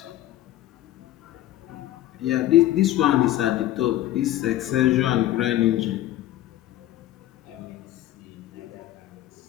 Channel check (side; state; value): right; quieter; 14.1 dB